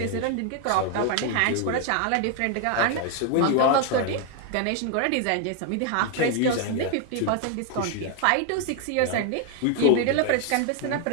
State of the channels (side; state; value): both; different; correlation 0.01